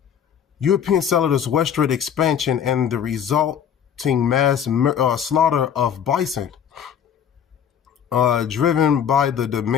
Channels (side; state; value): right; quieter; 8.4 dB